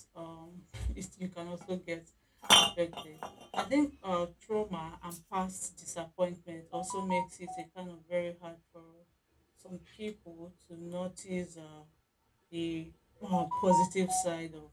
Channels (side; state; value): both; identical; correlation 1.00